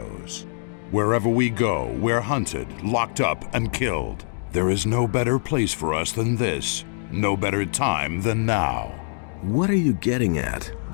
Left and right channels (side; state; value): right; silent; digital silence